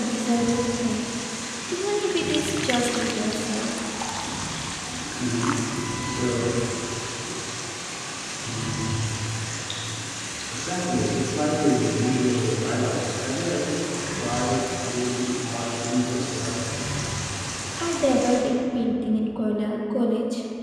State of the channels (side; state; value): both; identical; correlation 1.00